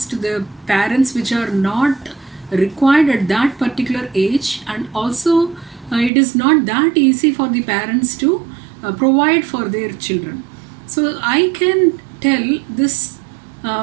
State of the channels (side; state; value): left; drops out; at 6.1 s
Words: to the parents which are not required at that particular age, and also it is not that easy for the parents to provide for their children. So I can tell this